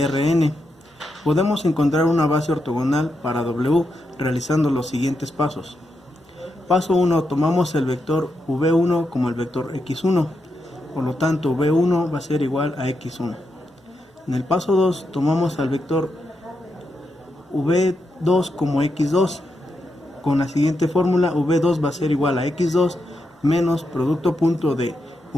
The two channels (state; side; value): normal; both; correlation 0.84